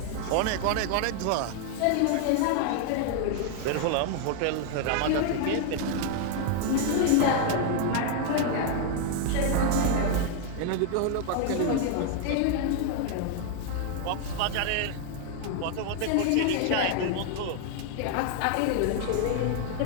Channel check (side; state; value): both; different; correlation 0.00